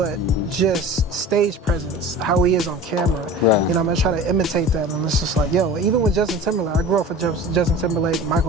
just stage presence, how he is on camera. Right. You know, I'm gonna try to imitate that, and it's just like, yo, even with Justin Timberlake, I grew up with Justin Timberlake,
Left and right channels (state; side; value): normal; both; correlation 0.38